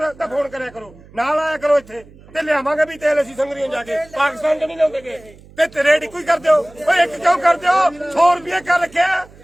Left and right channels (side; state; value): right; noise; hum, 23 dB below the sound